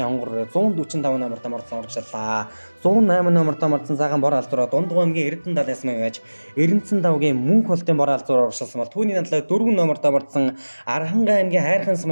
хонгороо 145 номер тамарсан урагшиллаа. 108 номер тамарсан сайхан бор алзураа Дундгов аймгийн Эрдэнэ далайн сумын яаж Эрдэнэцэн давгийн Мөнх холтын бор алзураа урагшилсан бол түүний надлаа 4 номер тамарсан Архангай аймгийн Хайрхан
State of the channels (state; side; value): inverted; both; correlation -1.00